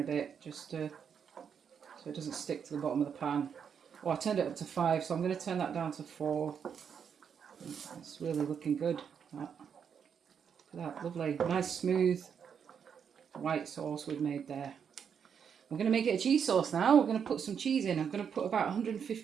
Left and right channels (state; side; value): quieter; left; 7.3 dB